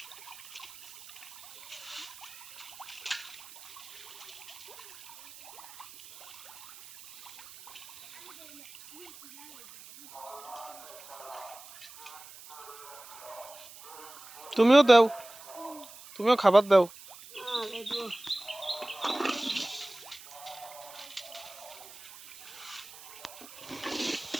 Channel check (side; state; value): right; noise; hiss, 17 dB below the sound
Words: তুমিও দাও, তুমিও খাবার দাও।